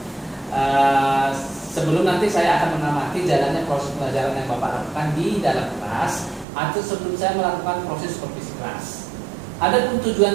Sebelum nanti saya akan mengamati jalannya proses pelajaran yang Bapak lakukan di dalam kelas, atau sebelum saya melakukan proses supervisi kelas. Adapun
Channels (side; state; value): left; drops out; at 6.5 s